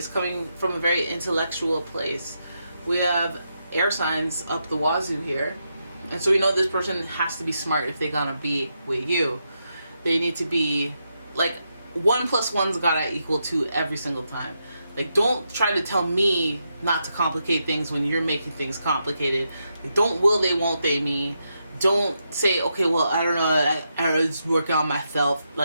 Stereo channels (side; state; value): both; inverted; correlation -0.83